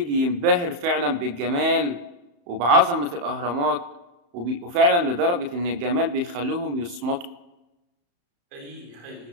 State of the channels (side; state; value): left; late; 35 ms